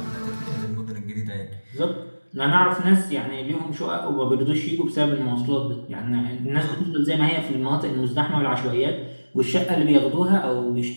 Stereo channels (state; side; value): inverted; both; correlation -1.00